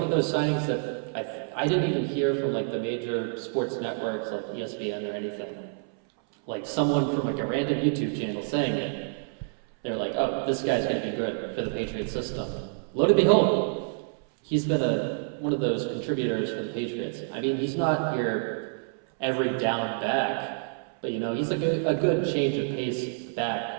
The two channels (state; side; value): silent; left; 59 dB below the other